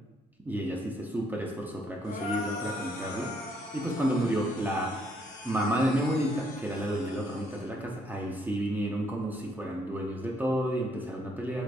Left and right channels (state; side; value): normal; both; correlation 0.70